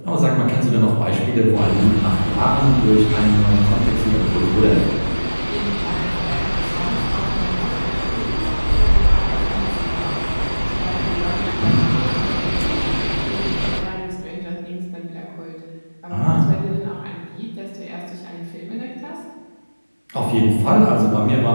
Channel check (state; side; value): inverted; both; correlation -1.00